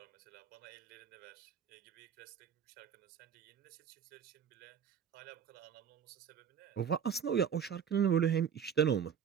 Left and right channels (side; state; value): left; quieter; 7.9 dB